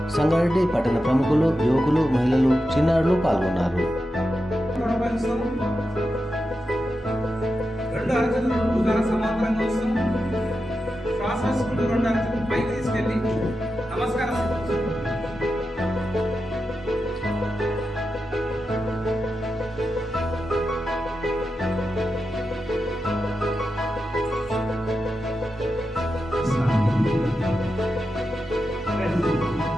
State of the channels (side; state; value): both; normal; correlation 0.89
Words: సంగారెడ్డి పట్టణ ప్రముఖులు, యువకులు, మహిళలు, చిన్నారులు పాల్గొన్నారు.